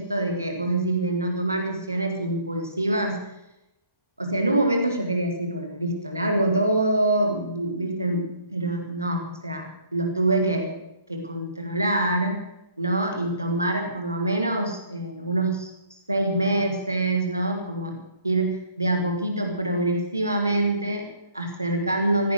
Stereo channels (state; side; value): inverted; both; correlation -0.60